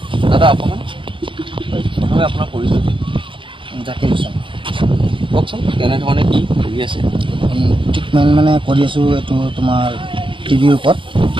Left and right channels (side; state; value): left; late; 0.25 ms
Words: অকণমান প্ৰথমে আপোনাৰ পৰিচয় জাকিৰ হুছেইন। কওকচোন, কেনেধৰণে কি কৰি আছে? ট্ৰিটমেণ্ট মানে কৰি আছোঁ এইটো তোমাৰ টিবিৰ ওপৰত,